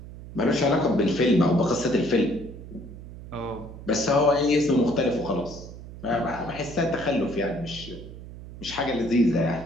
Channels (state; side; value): noise; right; hum, 14 dB below the sound